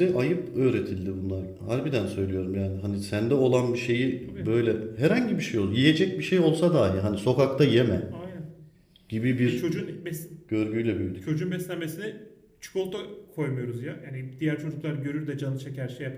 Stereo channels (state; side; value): identical; both; correlation 1.00